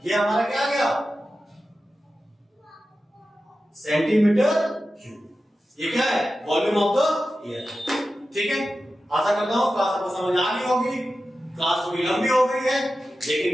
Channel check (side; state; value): both; normal; correlation 0.93